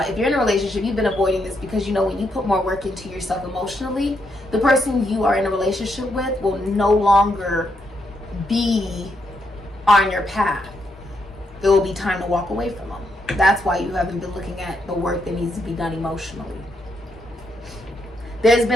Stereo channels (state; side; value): normal; both; correlation 0.79